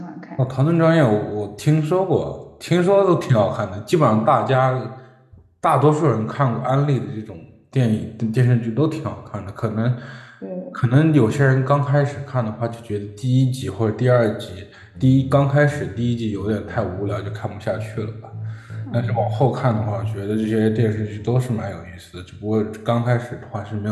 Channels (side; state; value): both; identical; correlation 1.00